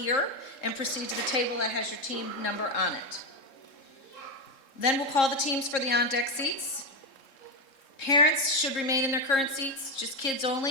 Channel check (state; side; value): late; right; 3.7 ms